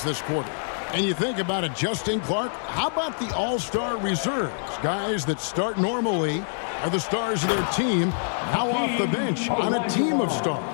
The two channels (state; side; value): silent; right; digital silence